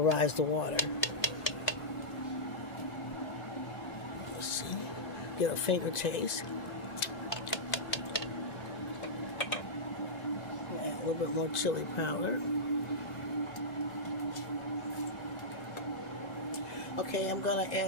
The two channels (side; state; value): right; late; 1.9 ms